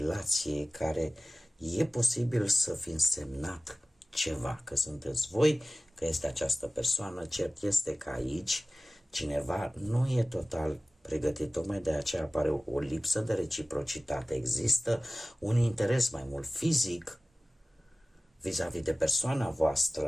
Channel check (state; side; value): normal; both; correlation 0.97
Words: care e posibil să fi însemnat ceva, că sunteți voi, că este această persoană, cert este că aici cineva nu e total pregătit, tocmai de aceea apare o lipsă de reciprocitate, există un interes mai mult fizic vis-a-vis de persoana